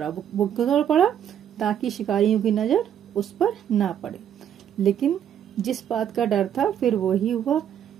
वो दौड़ पड़ा ताकि शिकारियों की नजर उस पर ना पड़े। लेकिन जिस बात का डर था फिर वो ही हुआ।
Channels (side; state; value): left; quieter; 9.6 dB